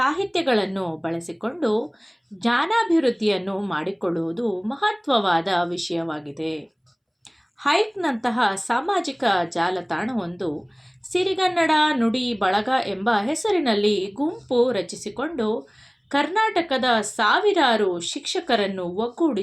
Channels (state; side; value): identical; both; correlation 1.00